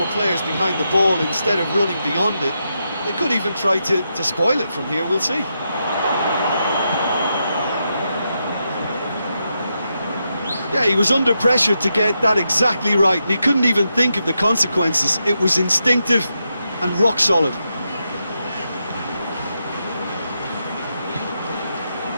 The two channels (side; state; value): both; inverted; correlation -0.85